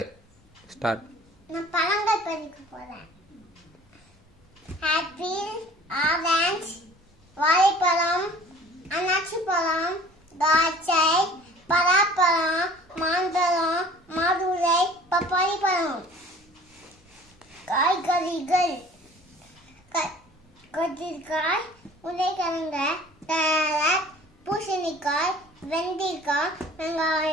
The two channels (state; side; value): normal; both; correlation 0.48